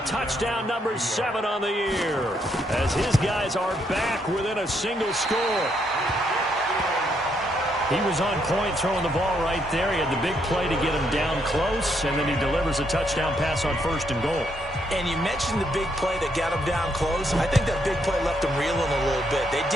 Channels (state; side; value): normal; both; correlation 0.75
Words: touchdown number 7 on the year, as his guys are back within a single score. He was on point throwing the ball right there. He had the big play to get him down close, and then he delivers a touchdown pass on 1st and goal. And you mentioned the big play that got him down close. I think that big play left him reeling a little bit. They